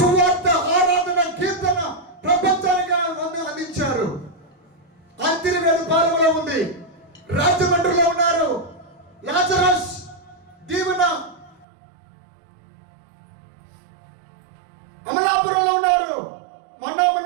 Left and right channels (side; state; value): left; drops out; at 11.7 s